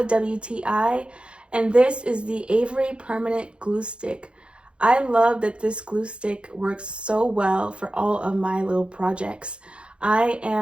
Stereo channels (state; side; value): late; left; 0.057 ms